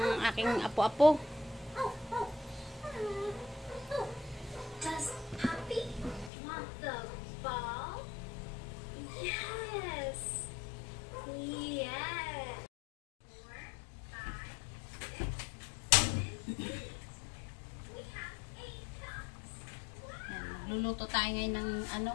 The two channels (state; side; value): drops out; right; at 6.3 s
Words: aking apo-apo. Does Puppy want the ball? Yes. Yes. 4, 5, 6, 7. We have 8 cups. Yan, magluluto tayo ngayon ng ano,